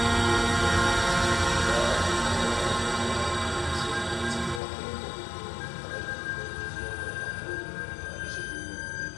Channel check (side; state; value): right; drops out; at 4.6 s